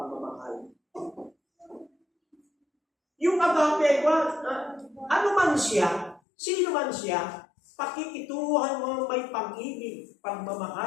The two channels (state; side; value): drops out; right; at 6.2 s